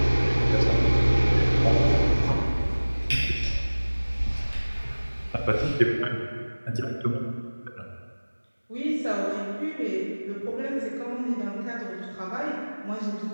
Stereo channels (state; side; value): inverted; both; correlation -1.00